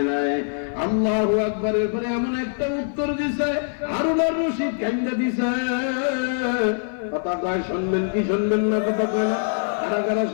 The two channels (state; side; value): silent; right; 57 dB below the other